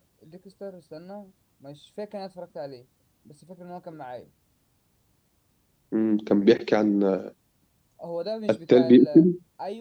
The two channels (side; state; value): both; identical; correlation 1.00